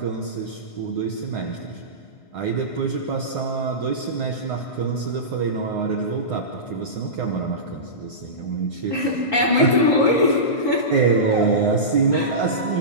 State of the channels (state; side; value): late; right; 1.5 ms